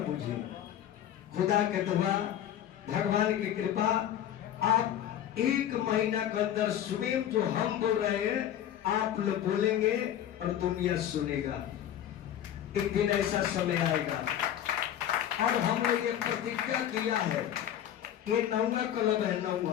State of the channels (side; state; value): right; quieter; 10.8 dB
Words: बुझे। खुदा के दुआ, भगवान की कृपा, आप 1 महीना के अंदर स्वयं जो हम बोल रहे हैं आप लोग बोलेंगे और दुनिया सुनेगा। एक दिन ऐसा समय आएगा। और हमने ये प्रतिज्ञा किया है, ये 9वां क्लब है,